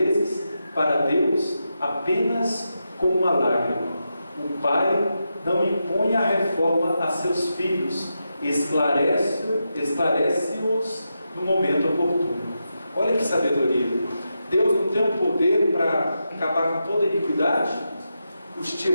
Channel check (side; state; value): both; inverted; correlation -0.87